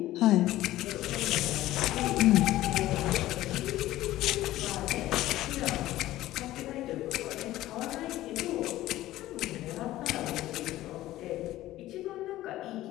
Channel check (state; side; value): quieter; right; 15.3 dB